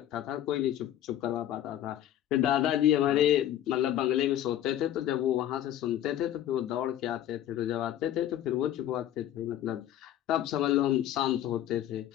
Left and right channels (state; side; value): quieter; right; 11.8 dB